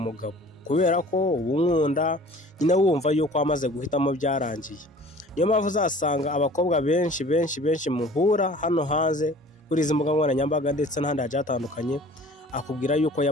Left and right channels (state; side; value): normal; both; correlation 0.47